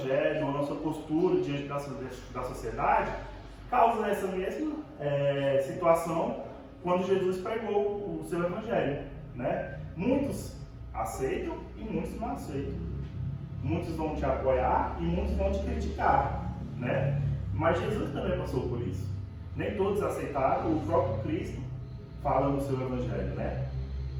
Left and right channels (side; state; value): both; identical; correlation 1.00